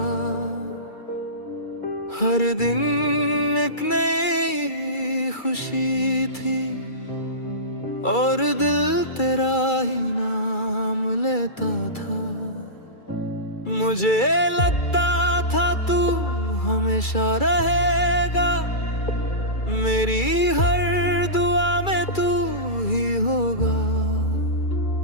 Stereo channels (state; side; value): late; right; 2.3 ms